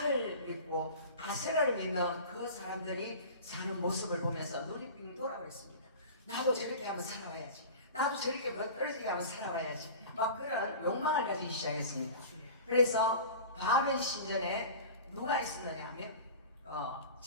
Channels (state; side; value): inverted; both; correlation -0.37